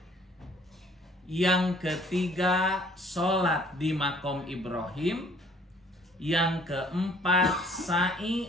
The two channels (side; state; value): both; normal; correlation 0.57